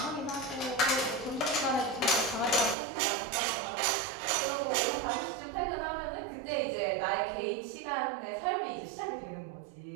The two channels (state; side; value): drops out; left; at 2.8 s